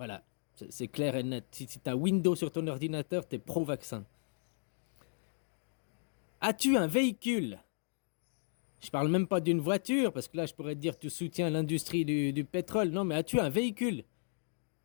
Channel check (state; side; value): silent; right; digital silence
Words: c'est clair et net. Si t'as Windows sur ton ordinateur, t'es pro-vaccin. As-tu un véhicule? Je parle même pas d'une voiture, parce que là, je pourrais te dire que tu soutiens l'industrie du pétrole. Non, mais as-tu un véhicule?